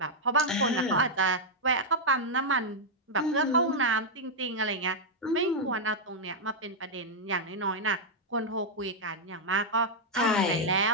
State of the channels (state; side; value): normal; both; correlation -0.04